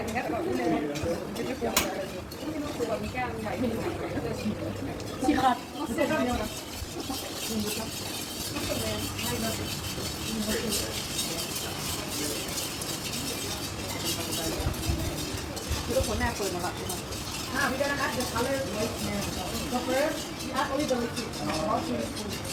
thứ các bạn cũng lên xịt hạt sẽ ra nhiều lắm. Cái cuốn này føler mig we're gonna add the color right now. So first, we add only the liquid.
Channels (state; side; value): identical; both; correlation 1.00